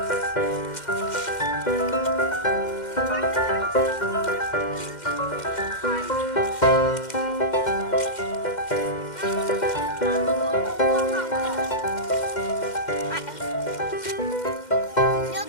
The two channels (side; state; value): right; late; 2.1 ms